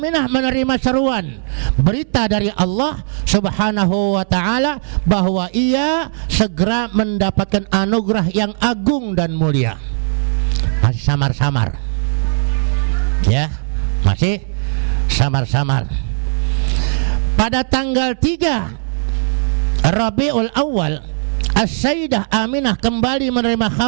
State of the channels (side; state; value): left; silent; 63 dB below the other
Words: menerima seruan, berita dari Allah Subhanahu wa ta'ala bahwa ia segera mendapatkan anugerah yang agung dan mulia. Masih samar-samar, ya, masih samar-samar. Pada tanggal 3 Rabiul Awal, As-Sayyidah Aminah kembali menerima